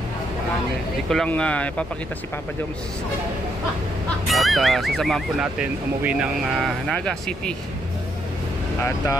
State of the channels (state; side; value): normal; both; correlation 0.75